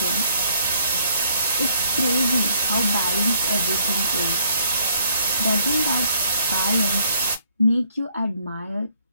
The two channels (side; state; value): both; inverted; correlation -0.65